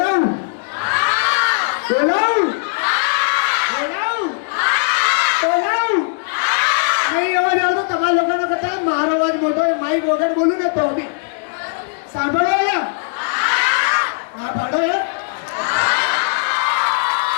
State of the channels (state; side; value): silent; right; digital silence